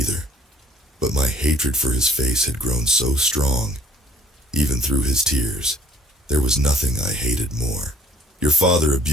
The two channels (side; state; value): both; normal; correlation 0.56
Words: but my hatred for his face had grown so strong. Even through his tears, there was nothing I hated more. Your father